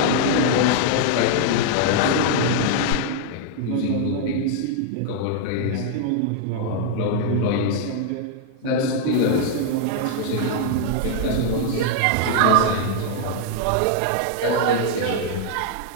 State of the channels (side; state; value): both; different; correlation 0.00